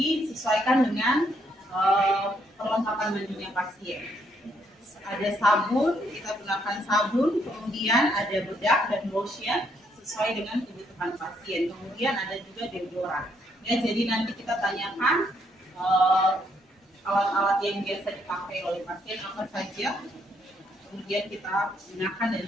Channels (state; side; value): normal; both; correlation 0.72